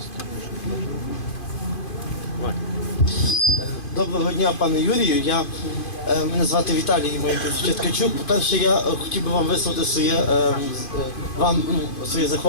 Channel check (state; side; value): late; right; 2.5 ms